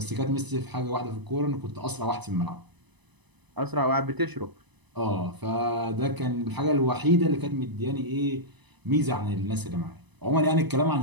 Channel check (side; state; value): left; late; 1.0 ms